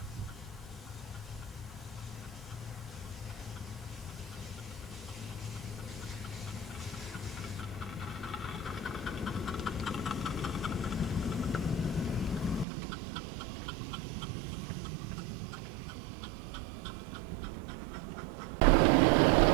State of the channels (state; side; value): drops out; left; at 12.7 s